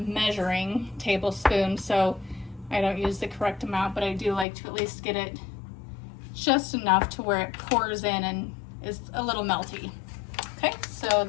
measuring tablespoon, so I don't use the correct amount, but I do like to at least get it just enough to where it pours in and is a little melty. Okay, so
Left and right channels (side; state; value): right; drops out; at 4.5 s